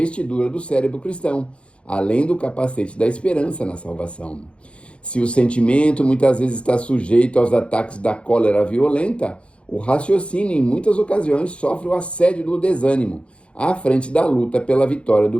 do cérebro cristão, além do capacete da esperança na salvação. Se o sentimento muitas vezes está sujeito aos ataques da cólera violenta, o raciocínio em muitas ocasiões sofre o assédio do desânimo, à frente da luta pela vitória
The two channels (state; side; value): late; right; 0.059 ms